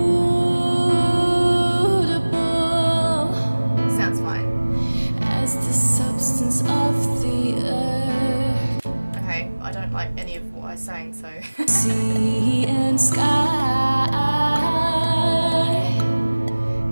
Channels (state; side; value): inverted; both; correlation -1.00